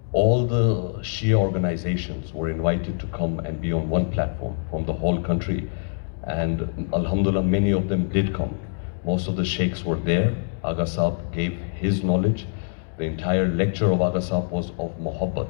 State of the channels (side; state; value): right; silent; digital silence